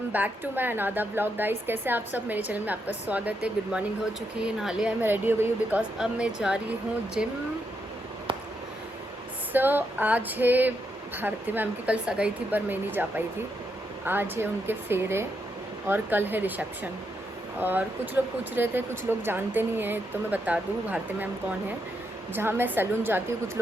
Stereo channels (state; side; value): normal; both; correlation 0.81